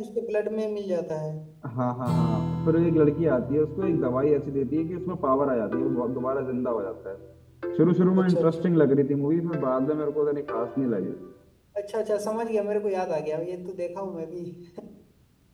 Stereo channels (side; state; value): both; identical; correlation 1.00